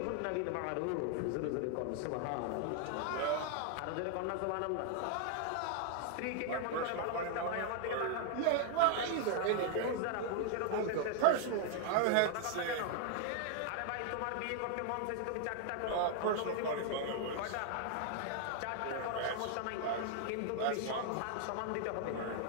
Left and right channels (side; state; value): both; different; correlation 0.00